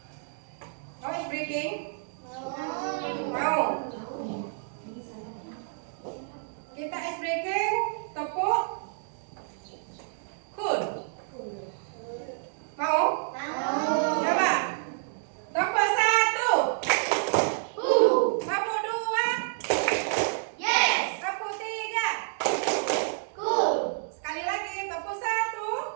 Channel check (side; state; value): left; silent; digital silence